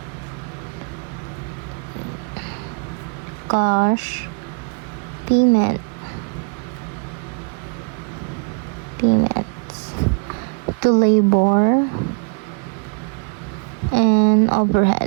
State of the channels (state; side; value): quieter; left; 35.4 dB